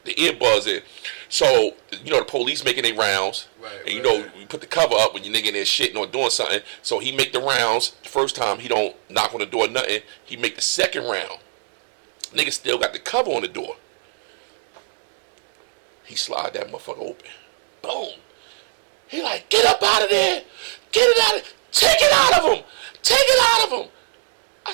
the earbuds in. So the police making their rounds. Right. And you put the cover up when your nigga in there shitting or doing something. So he make the rounds. The first time he don't knock on the door, nothing. He make the second round. Nigga still got the cover on the door. He slide that motherfucker open. Boom. He like, get up out of there. Get it out of take it out of him. Take it out of him.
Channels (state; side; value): silent; left; digital silence